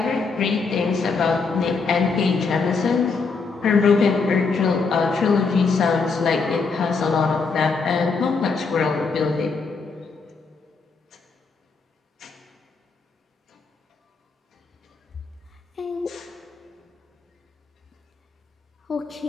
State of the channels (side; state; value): right; quieter; 4.6 dB